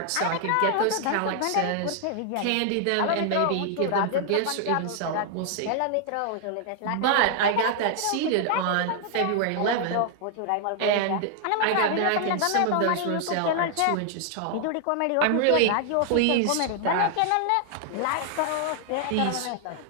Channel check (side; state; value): both; different; correlation 0.00